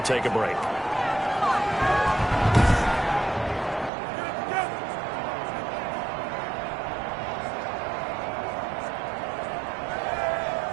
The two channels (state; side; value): drops out; left; at 3.9 s